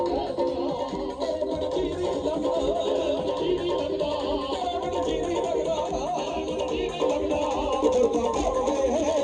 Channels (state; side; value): identical; both; correlation 1.00